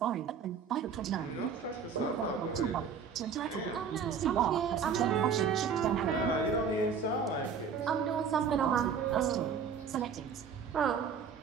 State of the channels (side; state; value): left; quieter; 6.4 dB